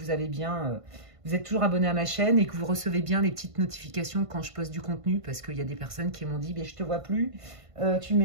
avez bien, vous êtes toujours abonné à ma chaîne et que vous recevez bien les petites notifications quand je poste du contenu, parce qu'il y a des personnes qui m'ont dit, je te vois plus, tu ne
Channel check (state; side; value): late; left; 1.5 ms